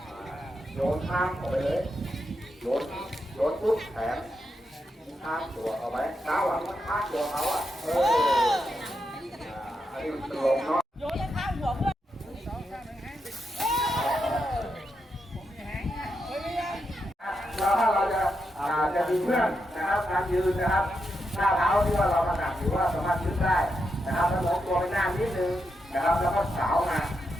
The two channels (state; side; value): normal; both; correlation 0.85